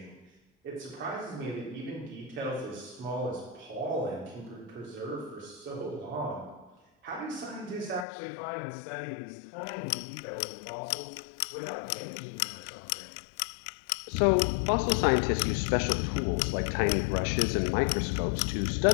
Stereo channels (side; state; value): right; drops out; at 8.1 s